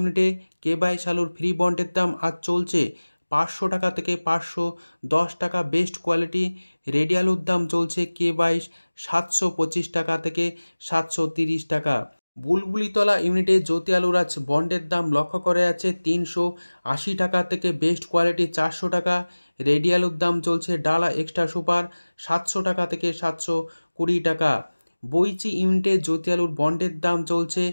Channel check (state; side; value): inverted; both; correlation -1.00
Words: কে-22 আলুর ফ্রি বন্ডের দাম আজ চলছে ৫০০ টাকা থেকে ৫১০ টাকা বেস্ট কোয়ালিটি। রেডি আলুর দাম চলছে কে-22 ৭২৫ টাকা থেকে ৭৩০ টাকা। বুলবুলিতলা ইউনিটে জ্যোতি আলুর আজ বন্ডের দাম লক্ষ্য করা যাচ্ছে ৩৮০ টাকা থেকে বেস্ট কোয়ালিটি ৪০০ টাকা। রেডি আলুর দাম চলছে ডালা এক্সট্রা সুপার ৭০০ টাকা থেকে ৭২০ টাকা। বইচি ইউনিটে জ্যোতি আলুর বন্ডের দাম চলছে